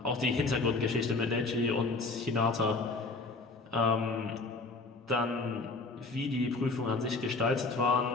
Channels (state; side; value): quieter; right; 3.6 dB